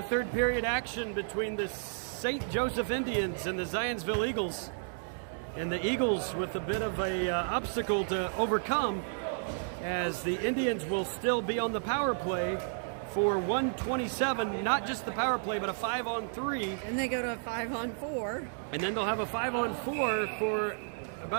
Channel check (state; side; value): silent; left; digital silence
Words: third period action between the St. Joseph Indians and the Zionsville Eagles. And the Eagles with a bit of a obstacle to overcome, as the Indians will still be on the power play for 1:27, not just the power play, but a 5-on-3. And they go to a 5-on-4. And then they'll have a 5-on-4 for